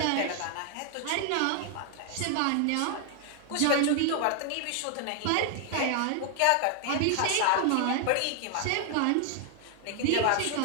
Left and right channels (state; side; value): different; both; correlation 0.00